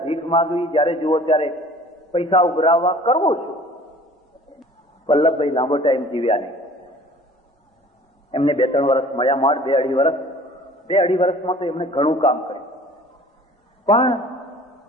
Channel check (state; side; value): normal; both; correlation 0.48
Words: ભીખ માગવી, જ્યારે જુઓ ત્યારે પૈસા ઉઘરાવવા, કરવું શું? વલ્લભભાઈ લાંબો ટાઈમ જીવ્યા નહીં. એમને 2-3 વર્ષ મળ્યા, માડ 2-2.5 વર્ષ. 2-2.5 વર્ષમાં તો એમને ઘણું કામ કર્યું. પણ